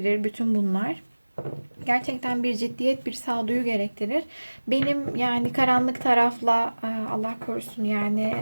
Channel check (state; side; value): inverted; both; correlation -1.00